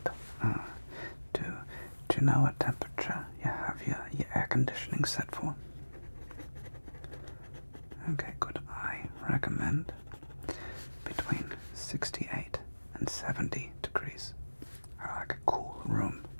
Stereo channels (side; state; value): both; inverted; correlation -1.00